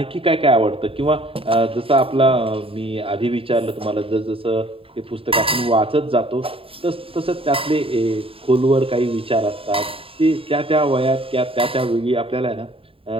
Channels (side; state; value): left; late; 0.27 ms